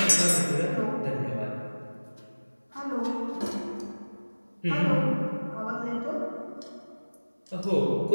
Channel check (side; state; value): both; inverted; correlation -1.00